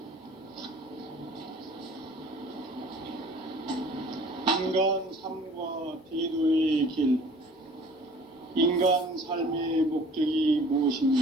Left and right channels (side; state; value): both; normal; correlation 0.49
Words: 인간 삶의 목적이